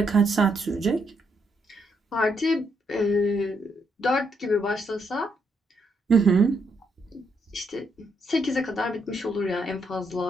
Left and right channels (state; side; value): normal; both; correlation 0.76